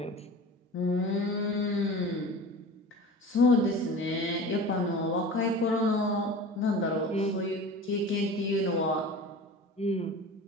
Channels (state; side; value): normal; both; correlation 0.36